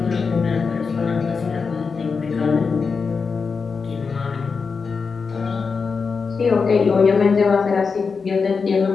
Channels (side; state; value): right; quieter; 5.1 dB